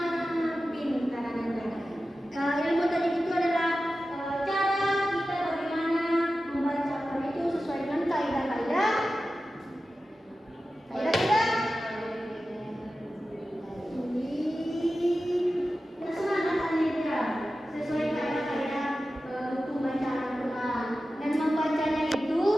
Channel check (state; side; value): normal; both; correlation 0.94